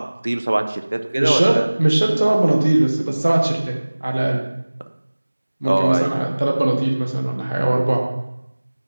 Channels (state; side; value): inverted; both; correlation -1.00